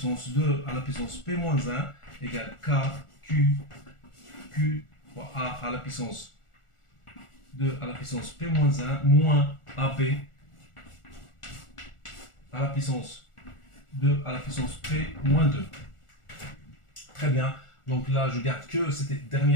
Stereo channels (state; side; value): late; right; 1.4 ms